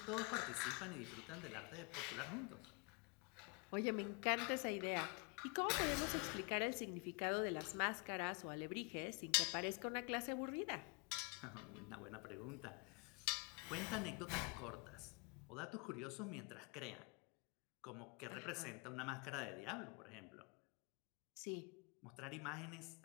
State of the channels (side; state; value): right; quieter; 32.4 dB